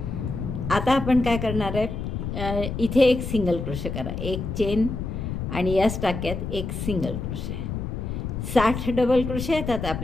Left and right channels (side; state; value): left; noise; rumble, 5 dB below the sound